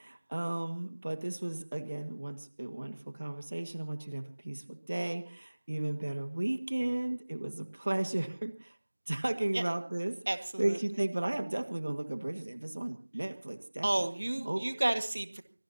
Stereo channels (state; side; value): inverted; both; correlation -1.00